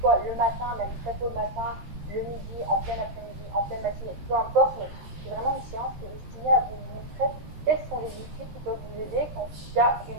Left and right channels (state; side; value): late; left; 13 ms